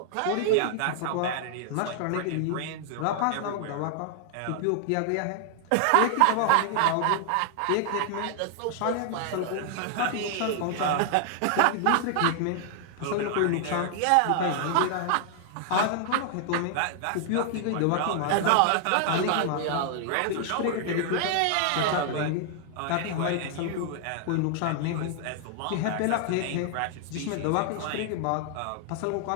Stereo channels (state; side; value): different; both; correlation 0.00